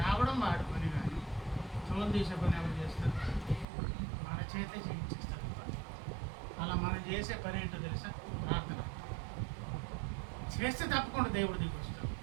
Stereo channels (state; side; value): drops out; left; at 3.7 s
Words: వాడి పని, కానీ తోలు తీసే పని ఎవరు చేస్తారు? మన చేతే చేయించేస్తారు. అలా మనం చేసే పని ఏంటో తెలుసా? ప్రార్థన చేస్తే తప్పకుండా దేవుడు దిగి వస్తాడు,